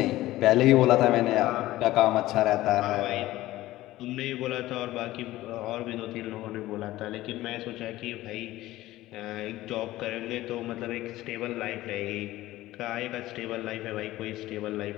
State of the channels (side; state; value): right; quieter; 16.4 dB